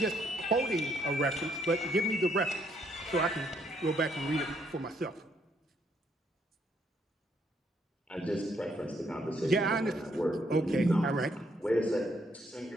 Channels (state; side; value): normal; both; correlation 0.71